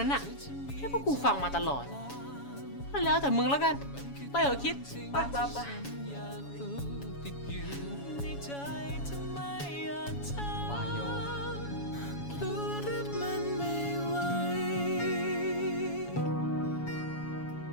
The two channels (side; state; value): right; late; 7.1 ms